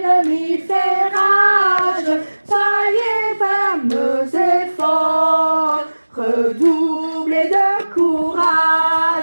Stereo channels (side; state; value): both; inverted; correlation -1.00